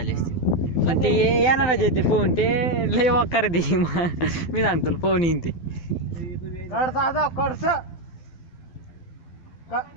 असती पण ते येणारच आहे ते फोन ते लय वकार दे मी सांगतो फोन येईन ते कडसा जाव कडस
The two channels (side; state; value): right; late; 12 ms